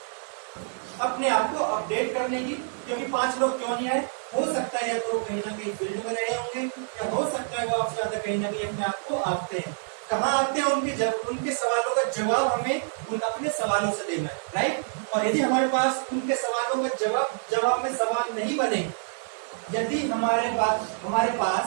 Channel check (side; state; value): left; silent; digital silence